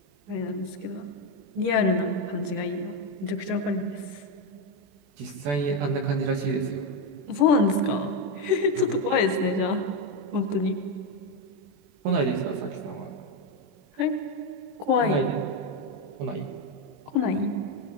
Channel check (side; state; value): left; late; 21 ms